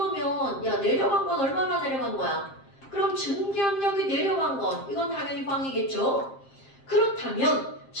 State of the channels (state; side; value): late; right; 7.5 ms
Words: 야 내려간 건 얼마나 내려간 거야? 그럼 증기압력이 내려간 건 이건 당연히 빵이겠죠? 그렇다면